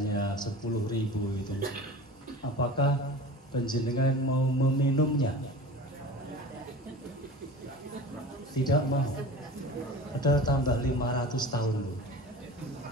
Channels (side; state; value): both; normal; correlation 0.36